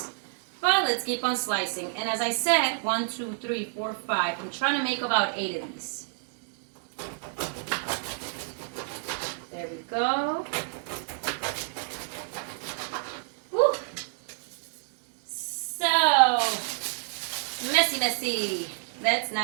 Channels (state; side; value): silent; left; digital silence